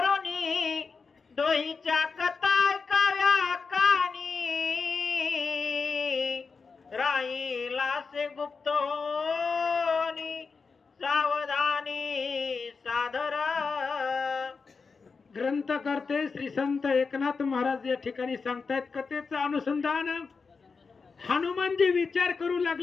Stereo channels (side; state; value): right; quieter; 4.9 dB